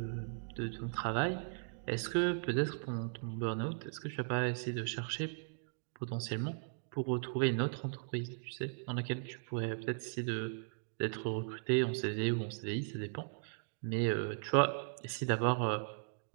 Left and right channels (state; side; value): silent; left; digital silence